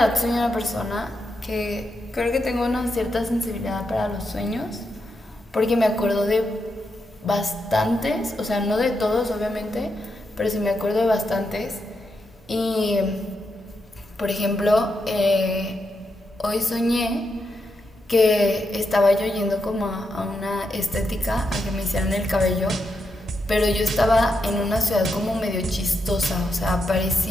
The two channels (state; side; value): normal; both; correlation 0.84